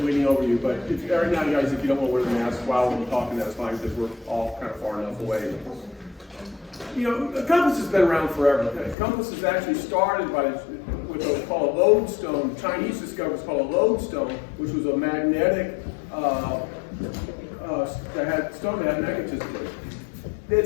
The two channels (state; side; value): drops out; right; at 9.0 s